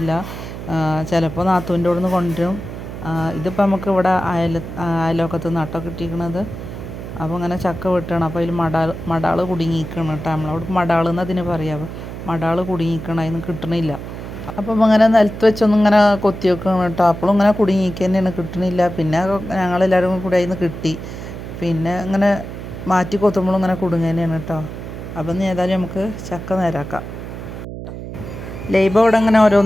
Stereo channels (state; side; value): noise; right; hum, 9 dB below the sound